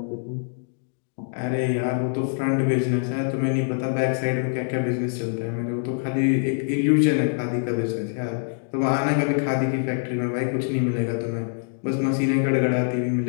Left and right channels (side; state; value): right; silent; digital silence